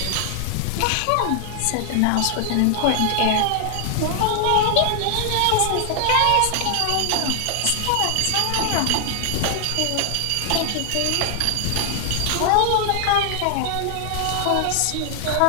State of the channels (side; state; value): both; different; correlation 0.00